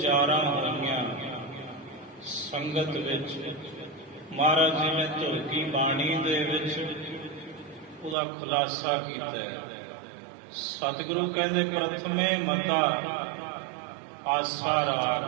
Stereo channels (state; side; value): drops out; left; at 8.2 s